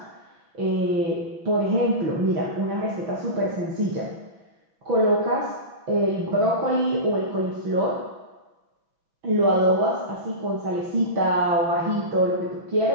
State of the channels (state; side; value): late; left; 6.1 ms